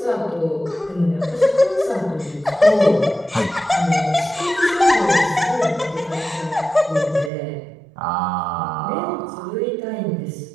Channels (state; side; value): drops out; left; at 7.3 s